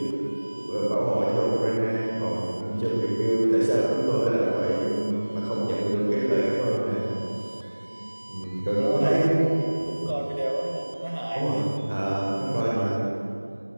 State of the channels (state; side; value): inverted; both; correlation -1.00